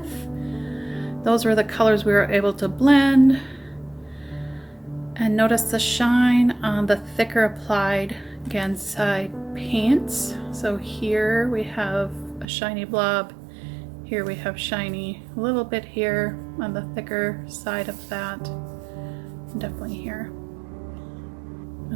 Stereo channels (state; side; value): drops out; left; at 12.5 s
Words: Those were the colors we were able to blend. And notice the shine on the thicker applied Gansai paints. So here we have a shiny blob. Here we have shiny a little bit here on the thicker side of that. Definitely here.